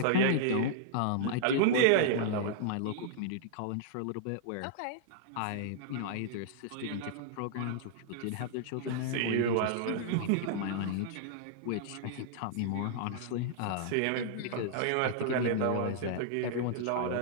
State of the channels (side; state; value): both; different; correlation -0.02